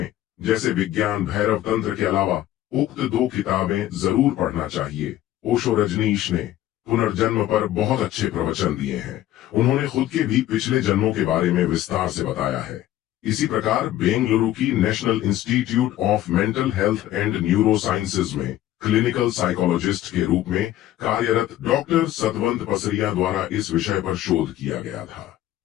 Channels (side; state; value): right; quieter; 13.6 dB